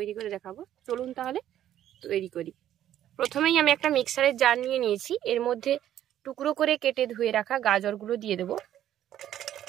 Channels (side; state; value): left; quieter; 11.6 dB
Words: করে দেখাবো। চলুন তাহলে তৈরি করি। প্রথমেই আমি একটা মিক্সারের জার নিয়ে নিয়েছি। এর মধ্যে টুকরো করে কেটে ধুয়ে রাখা গাজরগুলো দিয়ে দেব।